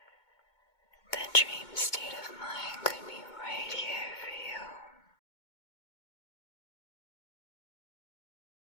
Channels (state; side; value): late; right; 2.2 ms